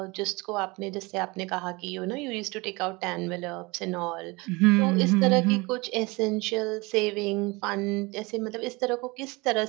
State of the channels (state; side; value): quieter; left; 25.1 dB